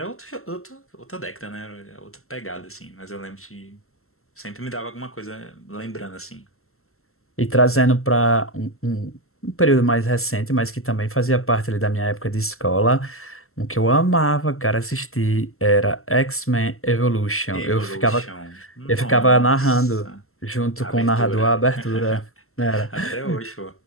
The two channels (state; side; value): late; right; 0.62 ms